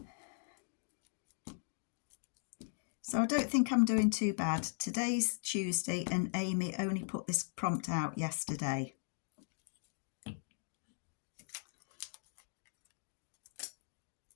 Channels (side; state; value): right; silent; digital silence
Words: So I don't think I'm doing too bad. Today's Tuesday and Amy only put this prompt out yesterday.